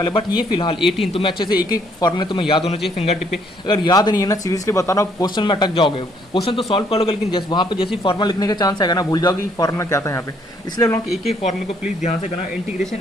बट ये फिलहाल 18 तुम्हें अच्छे से एक एक फॉर्मूले तुम्हें याद होना चाहिए फिंगर टिप पे। अगर याद नहीं है ना, सीरियसली बता रहा हूँ, क्वेश्चन में अटक जाओगे। क्वेश्चन तो सॉल्व कर लोगे, लेकिन जैसे वहाँ पे जैसे फॉर्मूला लिखने का चांस आएगा ना, भूल जाओगे कि फॉर्मूला क्या था यहाँ पे। इसलिए लोग एक एक फॉर्मूले को प्लीज ध्यान से करना।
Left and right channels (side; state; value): both; normal; correlation 0.67